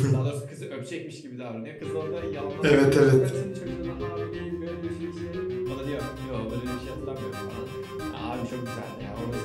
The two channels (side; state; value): both; identical; correlation 1.00